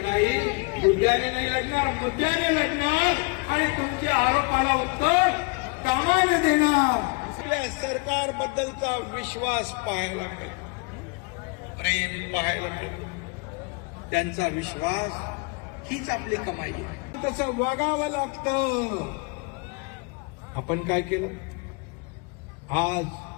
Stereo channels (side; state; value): right; quieter; 30.7 dB